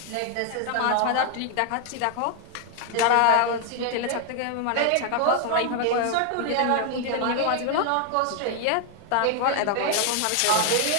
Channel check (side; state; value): both; different; correlation 0.00